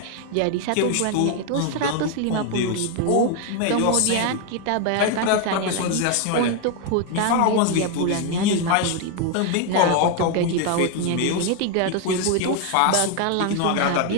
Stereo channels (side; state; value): both; different; correlation 0.01